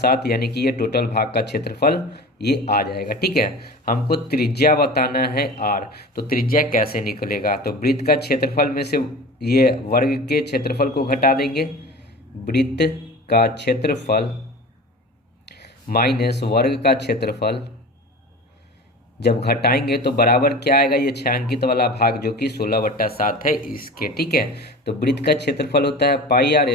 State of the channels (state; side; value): normal; both; correlation 0.35